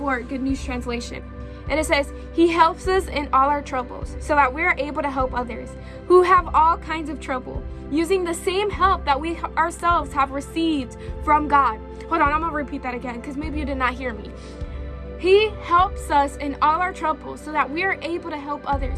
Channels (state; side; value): identical; both; correlation 1.00